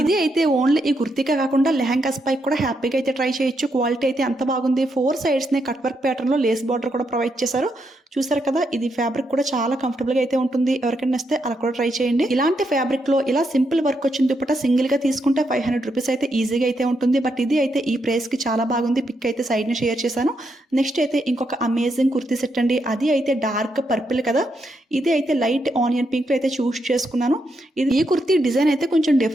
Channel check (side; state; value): both; normal; correlation 0.80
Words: అయితే ఓన్లీ ఈ కుర్తీగా కాకుండా లెహంగాస్ పై కూడా హ్యాపీగా అయితే ట్రై చేయొచ్చు. క్వాలిటీ అయితే అంత బాగుంది. 4 sides ని కట్ వర్క్ ప్యాటర్న్ లో లేస్ బార్డర్ కూడా ప్రొవైడ్ చేశారు. చూసారు కదా, ఇది ఫ్యాబ్రిక్ కూడా చాలా కంఫర్టబుల్ గా అయితే ఉంటుంది. ఎవరికైనా వస్తే అలా కూడా ట్రై చేయండి. ఇలాంటి ఫ్యాబ్రిక్ లో ఇలా సింపుల్ వర్క్ వచ్చిన దుపట్టా సింగిల్ గా తీసుకుంటే 500 రూపీస్ అయితే ఈజీగా అయితే ఉంటుంది. బట్ ఇది అయితే ఈ ప్రైస్ కి చాలా బాగుంది. పిక్ అయితే సైడ్ ని షేర్ చేశాను. నెక్స్ట్ అయితే ఇంకొక అమేజింగ్ కుర్తీ సెట్ అండి. అది అయితే డార్క్ పర్పుల్ కదా, ఇది అయితే లైట్ ఆనియన్ పింక్ లో అయితే చూస్ చేసుకున్నాను. ఈ కుర్తీ డిజైన్ అయితే కొంచెం